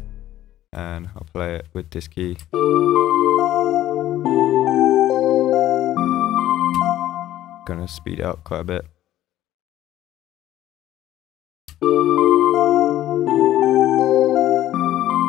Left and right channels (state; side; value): quieter; right; 13.5 dB